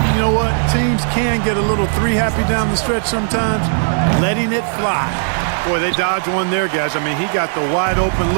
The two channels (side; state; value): left; silent; digital silence